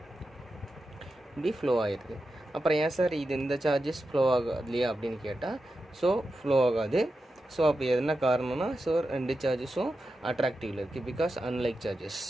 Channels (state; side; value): normal; both; correlation 0.90